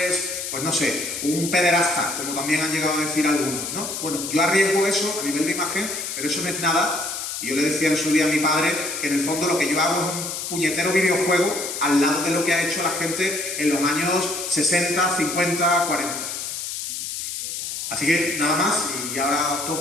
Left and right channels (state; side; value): noise; left; hiss, 5 dB below the sound